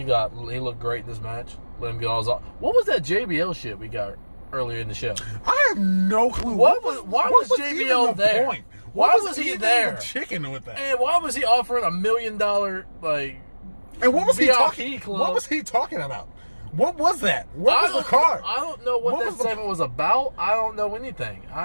he looked great in this match. Let him get all his off. What was that JBL shit we got earlier in the show? I have no clue. Why was JBL there? Point? Why was he there? Chicken with that. And why was he offering $1 million like? And what was he talking? Club? What was he talking about? What was that? What was the card? I don't know what that segment was about. I don't know anything.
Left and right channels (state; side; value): inverted; both; correlation -1.00